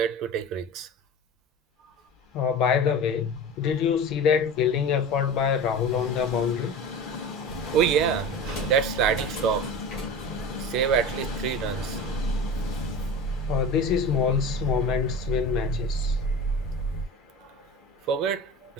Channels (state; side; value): normal; both; correlation 0.32